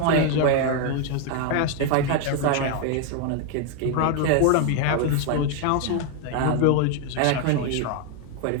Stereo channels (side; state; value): both; different; correlation 0.01